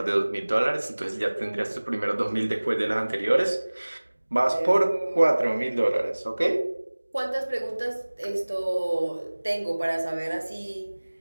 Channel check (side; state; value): both; inverted; correlation -1.00